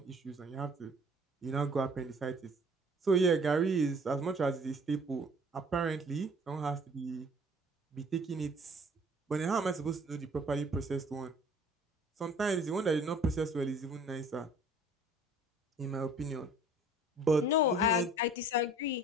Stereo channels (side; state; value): both; normal; correlation 0.52